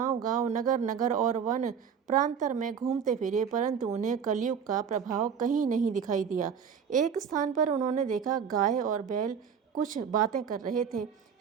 नगर-नगर और वन प्रांतर में घूमते फिरे, परंतु उन्हें कलयुग का प्रभाव कहीं नहीं दिखाई दिया। एक स्थान पर उन्होंने देखा, गाय और बैल कुछ बातें कर रहे थे।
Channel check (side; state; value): left; quieter; 7.1 dB